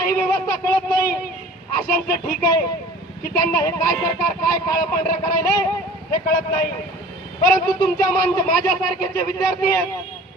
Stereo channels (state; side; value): normal; both; correlation 0.45